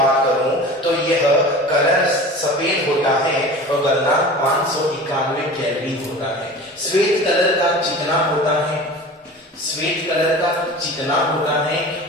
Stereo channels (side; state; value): both; normal; correlation 0.37